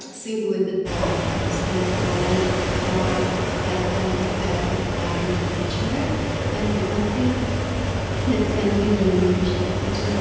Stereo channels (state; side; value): identical; both; correlation 1.00